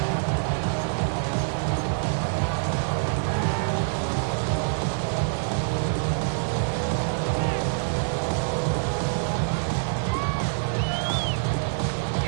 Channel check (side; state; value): left; silent; digital silence